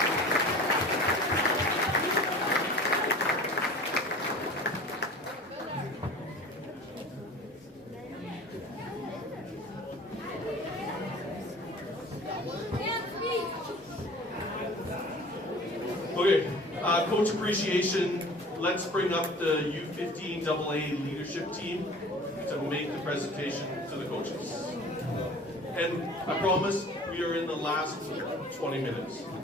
Okay, coach appreciation. Let's bring up the U15 AA leadership team to make the presentation to the coaches. And I promise we are in the last 20 minutes.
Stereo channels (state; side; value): normal; both; correlation 0.43